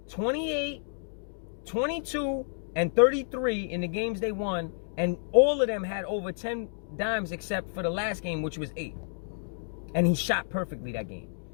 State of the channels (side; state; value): right; silent; digital silence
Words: 28, 22, and 33 in the games they won, and all of them had over 10 dimes except for the last game, which was 8. And he shot perfectly that game.